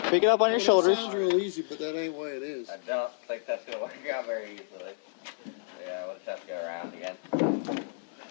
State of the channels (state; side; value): silent; right; digital silence